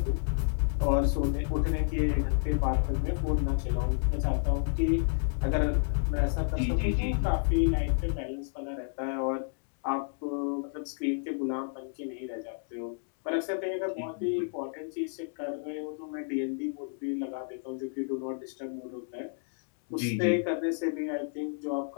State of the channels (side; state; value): right; silent; 57 dB below the other